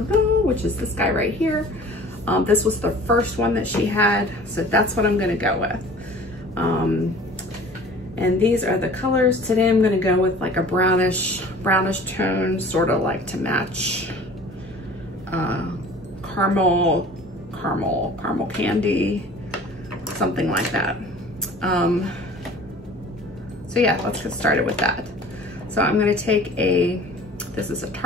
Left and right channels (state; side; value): normal; both; correlation 0.45